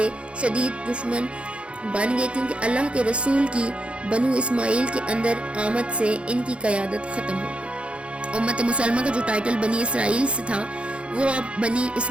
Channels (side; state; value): left; late; 0.059 ms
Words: شدید دشمن بن گئے، کیونکہ اللہ کے رسول کی بنو اسماعیل کے اندر آمد سے ان کی قیادت ختم ہو گئی۔ امت مسلمہ کا جو ٹائٹل بنی اسرائیل سے تھا وہ اب بنی